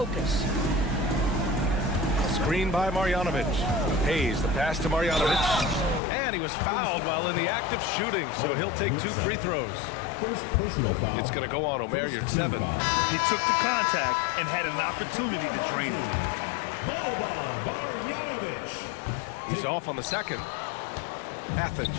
Screen by Marjanovic. Hayes, the pass to Marjanovic. And he was fouled while in the act of shooting, so he'll take 2 free throws. It's going to go on Omer Yurtseven. He took the contact and had an opportunity to drain it. He's off on the second. Athens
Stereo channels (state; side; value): drops out; right; at 6.0 s